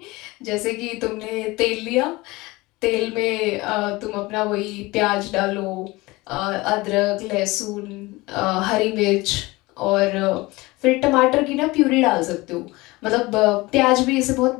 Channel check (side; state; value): right; quieter; 21.6 dB